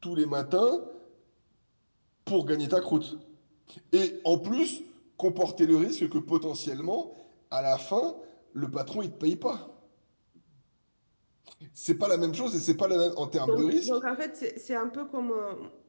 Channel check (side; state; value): both; inverted; correlation -1.00